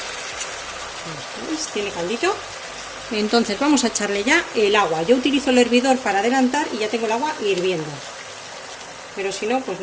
¿Veis? Tiene caldito. Entonces vamos a echarle ya el agua. Yo utilizo el hervidor para adelantar y ya tengo el agua hirviendo. Pero si no, pues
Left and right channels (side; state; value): both; identical; correlation 1.00